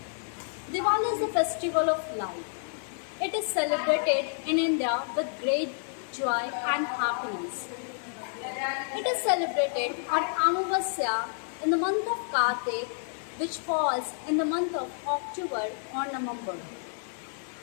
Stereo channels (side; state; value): right; silent; digital silence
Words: Diwali is a festival of light. It is celebrated in India with great joy and happiness. It is celebrated on Amavasya in the month of Kartik, which falls in the month of October or November.